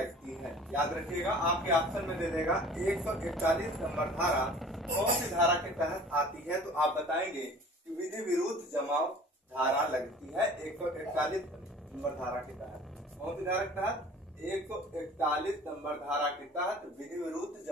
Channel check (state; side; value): normal; both; correlation 0.46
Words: है। याद रखिएगा, आपके ऑप्शन में दे देगा 141 नंबर धारा कौन सी धारा के तहत आती है, तो आप बताएंगे कि विधि विरुद्ध जमाव धारा लगती है 141 नंबर धारा के तहत। कौन सी धारा के तहत? 141 नंबर धारा के तहत विधि विरुद्ध